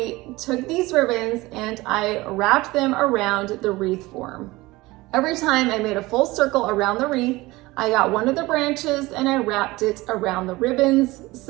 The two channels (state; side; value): quieter; left; 20.5 dB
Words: took these ribbons and I wrapped them around the wreath form. Every time I made a full circle around the wreath, I got one of the branches and I wrapped it around the ribbons